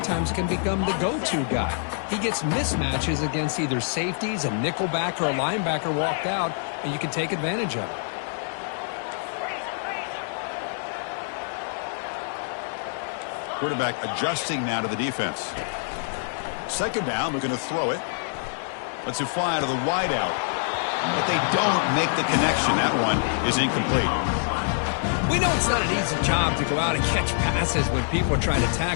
times can become the go-to guy. He gets mismatches against either safeties, a nickelback, or a linebacker walked out, and you can take advantage of it. Quarterback adjusting now to the defense. Second down, looking to throw it. Lets it fly out of the wideout. But they don't make the connection. That one is incomplete. We know it's not an easy job to go out and catch passes when people are trying to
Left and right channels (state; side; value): silent; right; digital silence